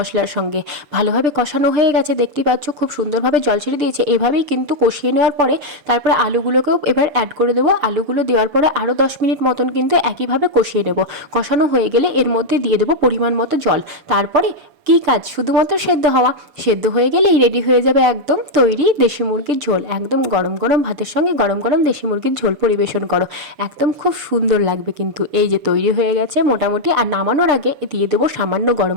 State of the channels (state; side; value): late; left; 6.7 ms